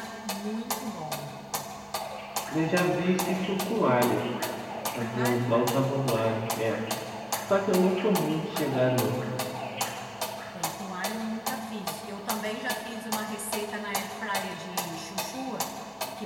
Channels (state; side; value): identical; both; correlation 1.00